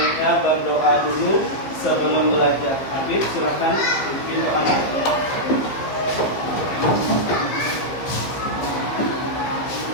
berdoa dulu sebelum belajar. Habib, silakan bikin doanya.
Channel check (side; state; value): right; late; 15 ms